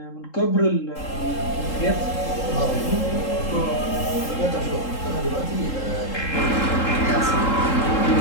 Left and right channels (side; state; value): right; late; 3.7 ms